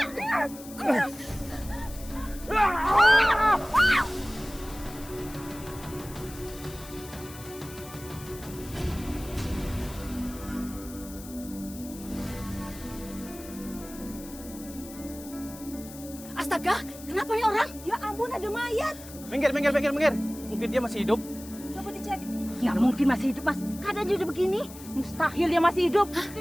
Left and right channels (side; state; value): left; noise; hiss, 16 dB below the sound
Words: Astaga, kenapa nih orang? Ya ampun, ada mayat. Minggir. Mungkin dia masih hidup. Coba dicek. Nggak mungkin masih hidup, Mas. Keadaan udah begini. Mustahil dia masih hidup.